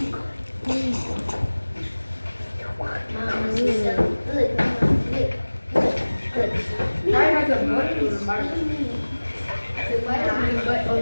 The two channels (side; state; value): both; inverted; correlation -1.00